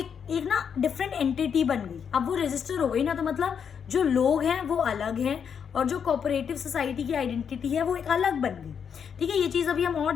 ना डिफरेंट एंटिटी बन गई। अब वो रजिस्टर हो गई ना, तो मतलब जो लोग हैं वो अलग हैं और जो कोऑपरेटिव सोसाइटी की आइडेंटिटी है वो एक अलग बन गई। ठीक है, ये चीज़ अभी हम और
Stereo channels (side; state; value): right; quieter; 7.3 dB